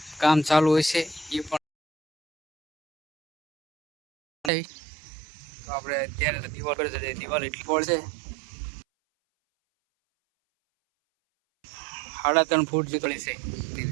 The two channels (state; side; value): drops out; left; at 4.5 s